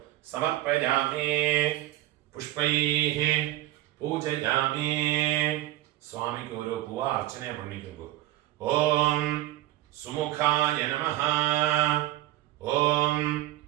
സമർപ്പയാമി. പുഷ്പൈഃ പൂജയാമി. സ്വാമിക്ക് ഓരോ പൂവ അർച്ചന പണിക്കുമ്പോ ഓം സുമുഖായ നമഃ, ഓം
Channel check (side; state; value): left; quieter; 15.5 dB